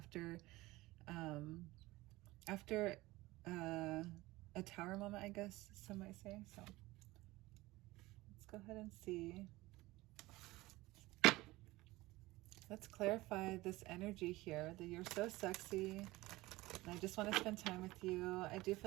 a tower moment, I guess some might say. So let's go ahead and see. Let's clarify this energy here, that you're so sexy and I just want to spend time with you. I do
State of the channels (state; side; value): quieter; left; 19.5 dB